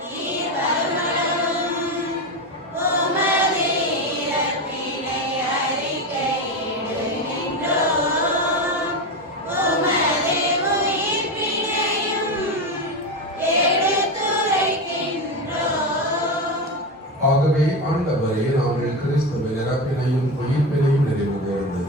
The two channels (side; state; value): both; normal; correlation 0.17